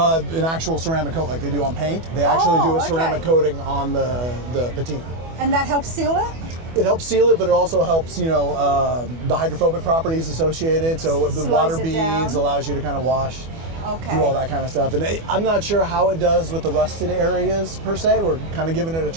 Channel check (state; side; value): late; left; 24 ms